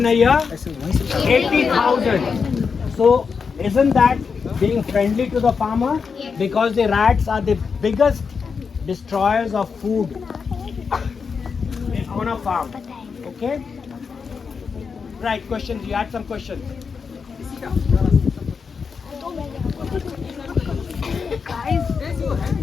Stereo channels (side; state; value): right; quieter; 5.6 dB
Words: a year? 80,000. So isn't that being friendly to the farmer? Because the rats are the biggest destroyers of food on a farm. Okay? Right, questions. You had some questions.